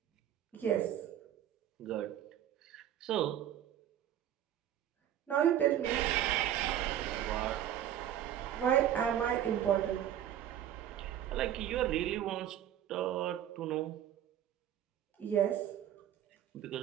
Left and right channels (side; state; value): left; quieter; 11.1 dB